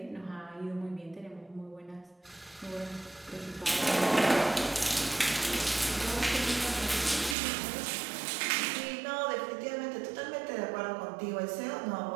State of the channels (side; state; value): left; drops out; at 7.4 s